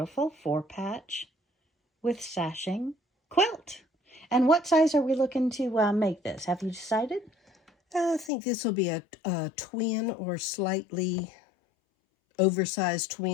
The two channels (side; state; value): right; drops out; at 8.3 s